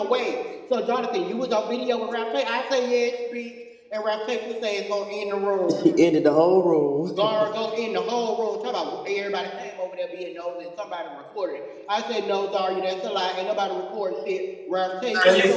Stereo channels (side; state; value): both; identical; correlation 1.00